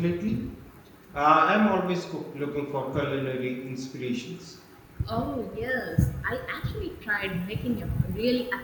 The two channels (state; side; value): identical; both; correlation 1.00